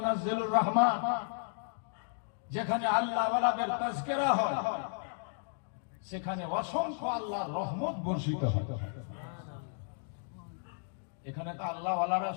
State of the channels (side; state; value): right; silent; digital silence